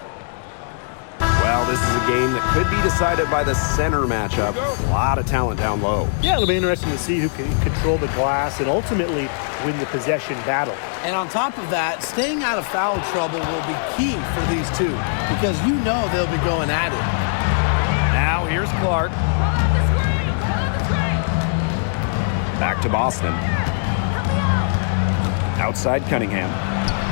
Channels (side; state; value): right; silent; 62 dB below the other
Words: Well, this is a game that could be decided by the center matchup. A lot of talent down low. Yeah, it'll be interesting to see who can control the glass and ultimately win the possession battle. And on top of that, staying out of foul trouble will be key for these two because you know they'll be going at it. Now here's Clark. Back to Boston. Outside Cunningham.